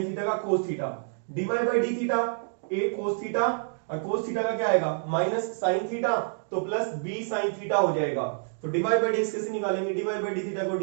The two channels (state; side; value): silent; left; digital silence